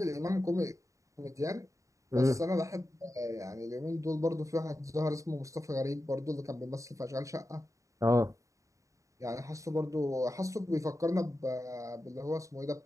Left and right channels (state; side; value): late; left; 0.16 ms